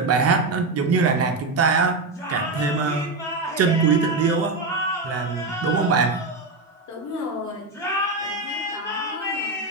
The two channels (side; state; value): left; quieter; 3.4 dB